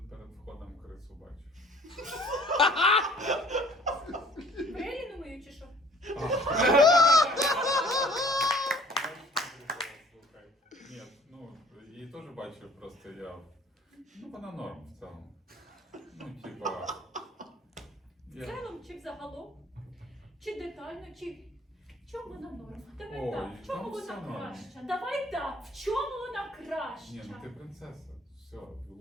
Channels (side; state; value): both; normal; correlation 0.53